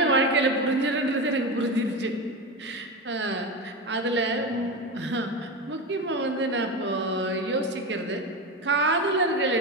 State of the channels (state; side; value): normal; both; correlation 0.20